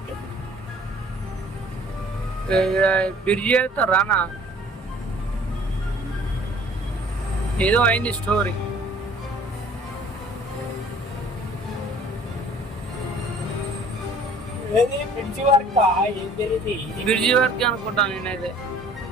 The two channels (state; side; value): normal; both; correlation 0.53